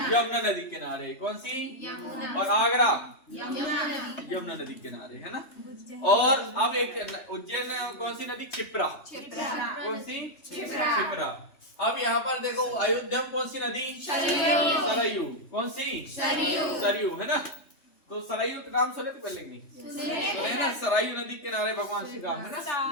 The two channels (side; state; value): right; late; 3.3 ms